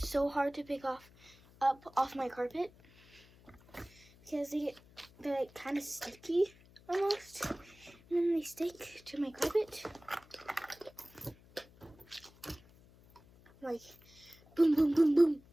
hard to pick off my carpet because they're like kind of sticky almost, and then they stick to my carpet. Like boom, boom, boom, boom.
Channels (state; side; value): noise; left; hum, 25 dB below the sound